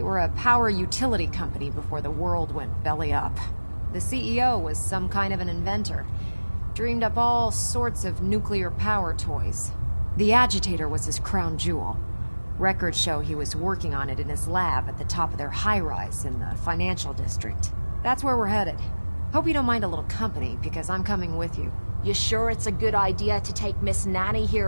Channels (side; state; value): both; inverted; correlation -1.00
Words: were a power utility company before the world went belly up. The CEO was some kind of an inventor. Dreamed up all sorts of nuclear power toys. The agitator was his crown jewel. Records show he was working on it in his lab at the top of their high-rise in the financial district. That's where we're headed. Hope you don't mind a little company, because I'm coming with you. You sure it's a good idea to take Miss Nanny